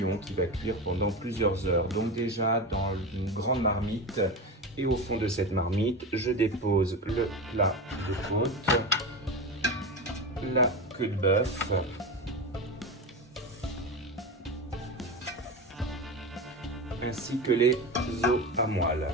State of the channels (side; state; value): both; normal; correlation 0.22